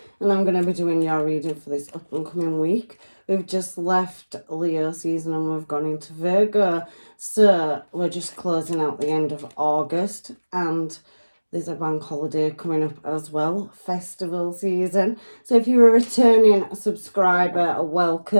and I'm going to be doing your reading for this up and coming week. We've just left Leo season and we've gone into Virgo, so we're just closing out the end of August and there's a bank holiday coming up as well, festival season. So if you're a returning subscriber,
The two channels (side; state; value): both; inverted; correlation -1.00